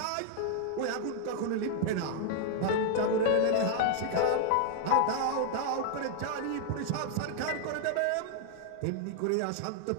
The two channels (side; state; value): both; different; correlation 0.00